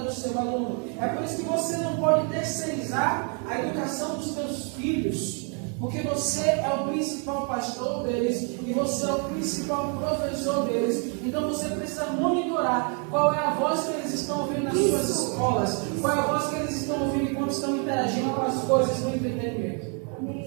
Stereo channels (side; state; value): left; quieter; 39.2 dB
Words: do seu aluno. É por isso que você não pode terceirizar a educação dos seus filhos, porque você é o principal pastor deles e você é o principal professor deles. Então você precisa monitorar qual é a voz que eles estão ouvindo nas suas escolas, qual é a voz que eles estão ouvindo enquanto estão interagindo com as coisas do entretenimento.